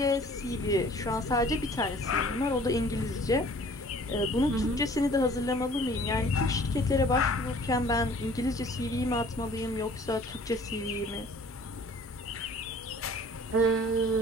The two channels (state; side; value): normal; both; correlation 0.51